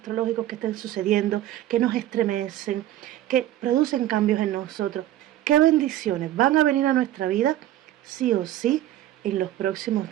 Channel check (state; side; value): quieter; left; 13.5 dB